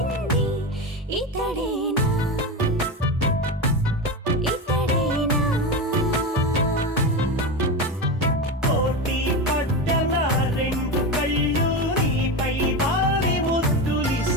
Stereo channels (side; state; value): both; normal; correlation 0.20